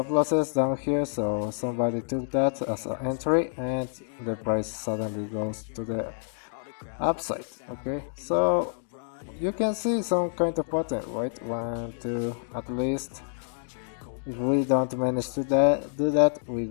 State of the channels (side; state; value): right; silent; digital silence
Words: losses down here, so somebody took that as an entry and the price suddenly goes to the upside. Okay, so you can see some kind of pattern, right? 1, 2, at least. If we don't manage to do that, we